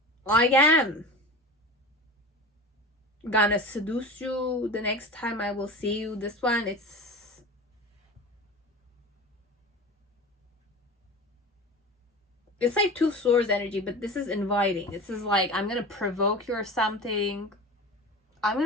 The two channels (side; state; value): both; normal; correlation 0.33